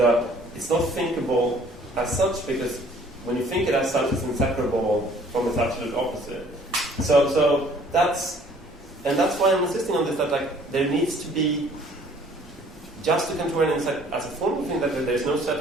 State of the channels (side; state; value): both; normal; correlation 0.56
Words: it's not thinkable as such, because when you think it as such, it's inseparable from its absolute opposite. So that's why I'm insisting on this, that there needs to be just a Kantorian as a formal thing, that there's no set